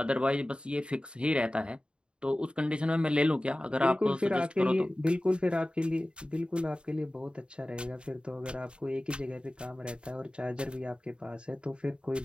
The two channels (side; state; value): left; late; 0.053 ms